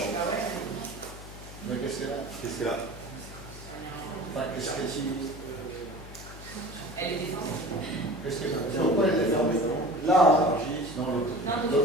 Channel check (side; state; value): left; noise; hum, 14 dB below the sound